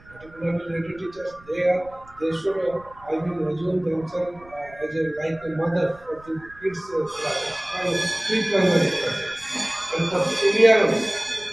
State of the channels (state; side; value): noise; right; rumble, 24 dB below the sound